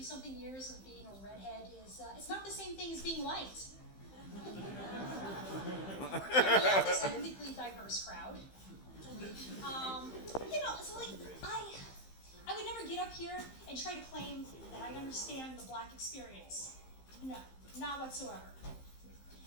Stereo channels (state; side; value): late; right; 15 ms